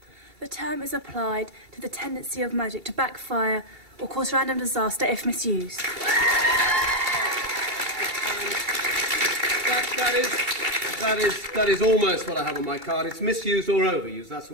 The term is applied to the tendency of magic to backfire or cause random disaster if misused. That is almost what I have on my card. It's misused or overused. That's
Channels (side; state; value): left; late; 2.3 ms